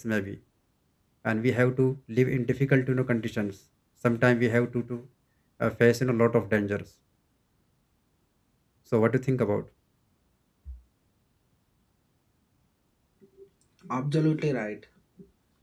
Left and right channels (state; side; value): identical; both; correlation 1.00